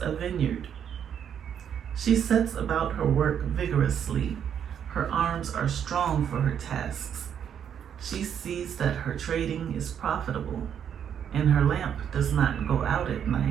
a vineyard. She sets about her work vigorously. Her arms are strong for her tasks. She sees that her trading is profitable, and her lamp does not go out at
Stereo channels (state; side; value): quieter; left; 8.6 dB